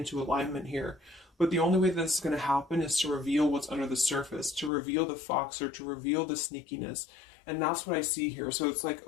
alignment here. But the only way that this is going to happen is to reveal what's under the surface, to reveal the fox, or to reveal the sneakiness. And that's what I see here. So it's like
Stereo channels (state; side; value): drops out; right; at 4.7 s